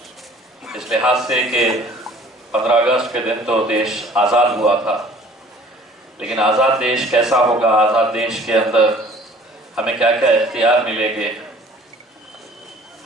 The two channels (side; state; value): both; normal; correlation 0.51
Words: इस लिहाज से कि 15 अगस्त के दिन तो देश आज़ाद हुआ था, लेकिन आज़ाद देश कैसा होगा, आज़ाद देश के अंदर हमें क्या क्या इख्तियार मिलेंगे,